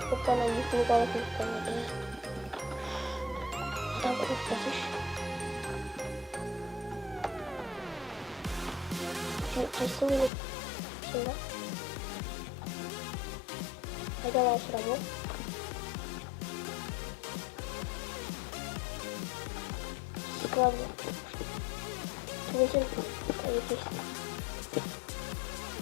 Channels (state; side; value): drops out; right; at 10.3 s